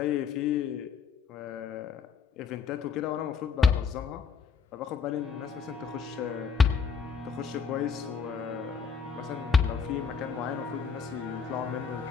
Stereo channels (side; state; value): right; quieter; 6.0 dB